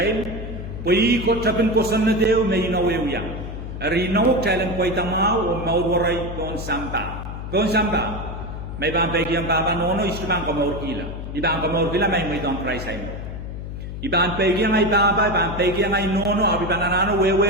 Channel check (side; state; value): left; noise; hum, 8 dB below the sound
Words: Pui ko tapin ko sanna deu may inawew yang. Rinaw child poi tamao o maurwaray kon sampa. Kon sampa. May bang pegiang papanono istubang ko maurkila. Ibang ko maurkila may don't try sa imo. Ibang pegiang ay baba, ibang pegiang ay nono, abi bananano